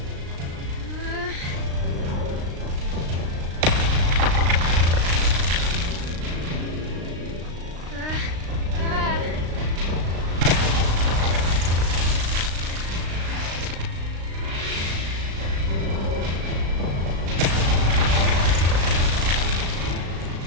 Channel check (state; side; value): late; left; 36 ms